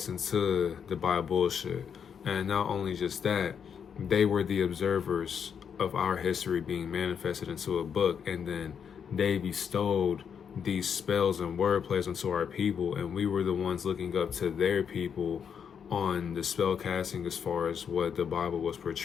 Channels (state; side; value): quieter; right; 7.3 dB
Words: into the Bible bullshit. And not only just that, they were the observers of our history being manifested into a book, and then they bestowed these spells and wordplays onto our people, and we were the ones looking up to their people on the spell casting as far as what the Bible was